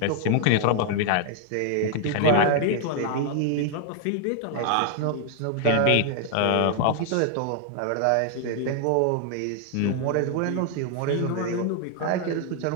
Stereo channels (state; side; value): different; both; correlation 0.00